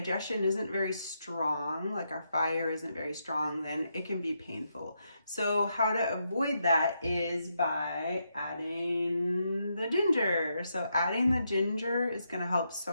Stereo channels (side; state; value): both; inverted; correlation -0.81